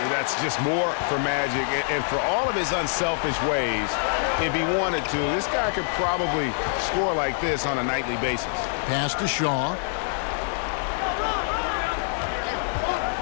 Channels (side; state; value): right; silent; 61 dB below the other